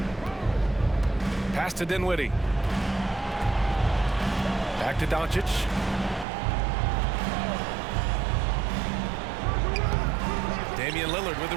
Pass to Dinwiddie. Back to Doncic. Damian Lillard with the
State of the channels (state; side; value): drops out; left; at 6.2 s